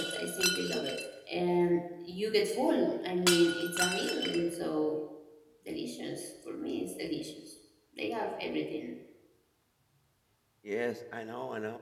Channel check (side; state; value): both; identical; correlation 1.00